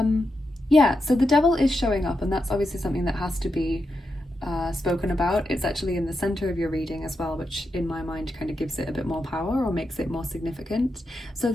Yeah, so the devil is showing up, and that's obviously something that has to be spoken about. It's actually in the center of your reading as well, which in my mind kind of gives it a bit more power or makes it more significant. So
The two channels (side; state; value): both; normal; correlation 0.86